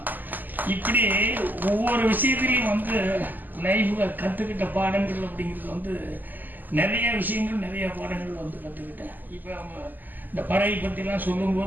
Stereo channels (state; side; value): late; left; 0.086 ms